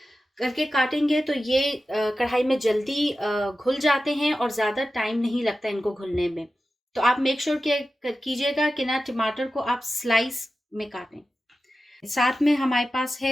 करके काटेंगे तो ये कढ़ाई में जल्दी घुल जाते हैं और ज़्यादा टाइम नहीं लगता इनको घुलने में। तो आप मेक श्योर कीजिएगा कि ना टमाटर को आप स्लाइस में काटें। साथ में हमारे पास है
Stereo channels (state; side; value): normal; both; correlation 0.94